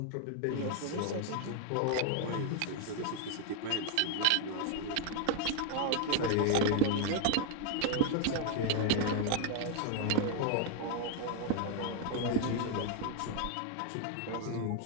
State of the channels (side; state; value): both; different; correlation 0.00